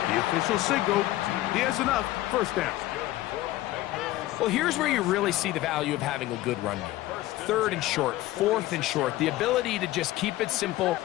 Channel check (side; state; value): right; quieter; 16.3 dB